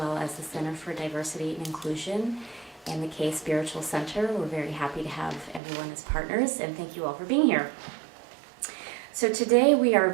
as the Center for Diversity and Inclusion and the K Spiritual Center. We're very happy to have everyone as partners, and thank you all for being here. So today we are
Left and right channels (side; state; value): left; drops out; at 5.6 s